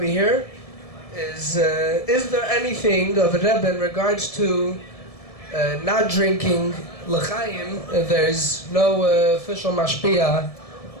here is there anything of a Rebbe in regards to not drinking l'chaim? There's no official mashpia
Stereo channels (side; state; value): right; late; 1.7 ms